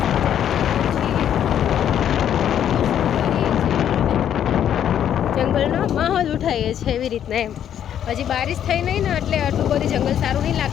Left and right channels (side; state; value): right; quieter; 9.9 dB